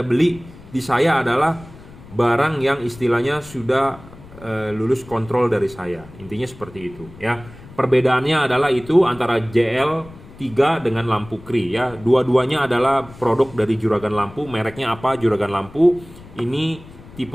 di saya adalah barang yang istilahnya sudah lulus kontrol dari saya. Intinya seperti itu, ya. Perbedaannya adalah itu antara JL3 dengan lampu Cree, ya. Dua-duanya adalah produk dari Juragan Lampu. Mereknya apa? Juragan Lampu. Ini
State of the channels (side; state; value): left; noise; rumble, 20 dB below the sound